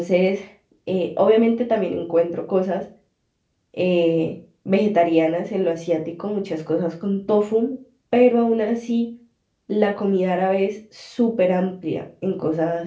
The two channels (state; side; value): identical; both; correlation 1.00